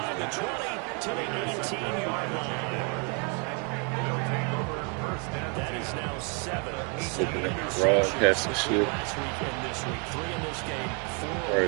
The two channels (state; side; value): quieter; left; 36.0 dB